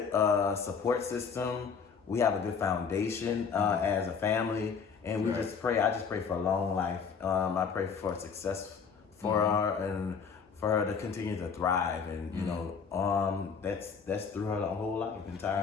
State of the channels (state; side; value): quieter; right; 6.0 dB